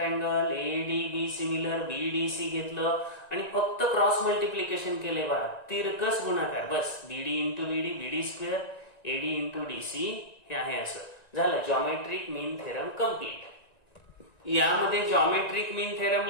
ADB similar, BDC घेतलं आणि फक्त क्रॉस मल्टिप्लिकेशन केले. बघा, तिरकस गुणाकार. बस, BD into BD square, AD into DC हे आहे. असं झालं जॉमेट्रिक मीन थेरम कम्प्लीट. यामध्ये जॉमेट्रिक मीन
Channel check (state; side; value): late; right; 1.9 ms